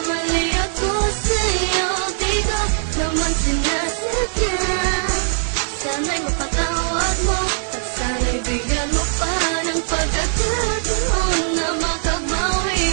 ako sa'yo. Di ko naman sinasadya. Sana'y mapatawad mo at sana'y bigyan mo pa ng pagkakataon na makabawi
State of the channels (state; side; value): silent; left; digital silence